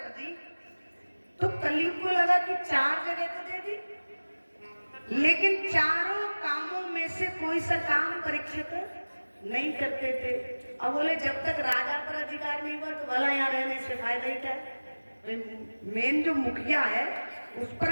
दी तो कलयुग को लगा कि 4 जगह तो दे दी, लेकिन चारों कामों में से कोई सा काम परीक्षित नहीं करते थे। अब बोले जब तक राजा पर अधिकार नहीं हुआ तो भला यहाँ रहने से फायदा ही क्या है? मेन जो मुखिया है उस पर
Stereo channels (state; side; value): inverted; both; correlation -1.00